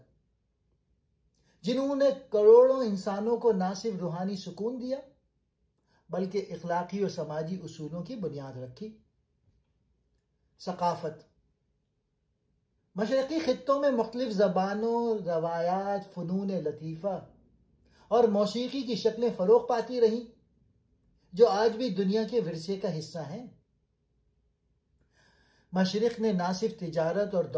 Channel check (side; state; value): both; identical; correlation 1.00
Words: جنہوں نے کروڑوں انسانوں کو نہ صرف روحانی سکون دیا بلکہ اخلاقی اور سماجی اصولوں کی بنیاد رکھی۔ ثقافت۔ مشرقی خطوں میں مختلف زبانوں، روایات، فنون لطیفہ اور موسیقی کی شکلیں فروغ پاتی رہیں، جو آج بھی دنیا کے ورثے کا حصہ ہیں۔ مشرق نے نہ صرف تجارت اور